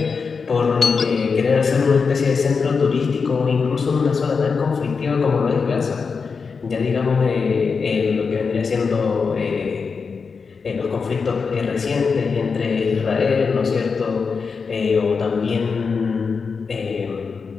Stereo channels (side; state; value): right; quieter; 5.2 dB